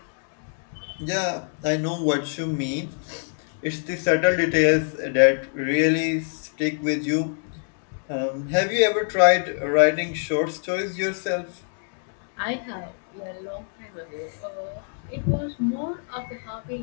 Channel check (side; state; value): right; silent; 62 dB below the other